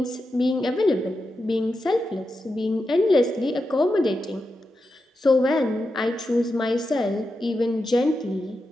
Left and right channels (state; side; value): normal; both; correlation 0.89